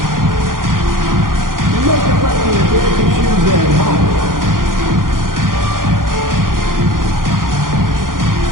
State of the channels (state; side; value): late; left; 0.90 ms